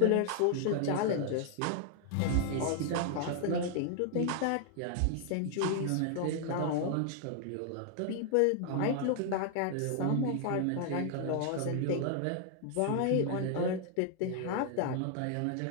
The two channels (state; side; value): different; both; correlation 0.00